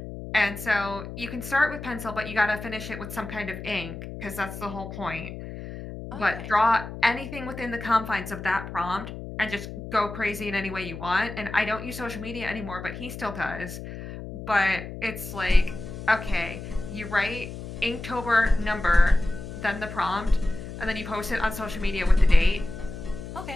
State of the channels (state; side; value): noise; left; hum, 10 dB below the sound